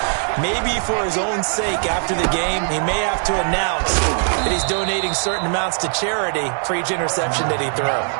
Maybe for his own sake after the game, he may have to announce that he's donating certain amounts to charity for each interception that he throws.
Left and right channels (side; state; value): left; silent; 55 dB below the other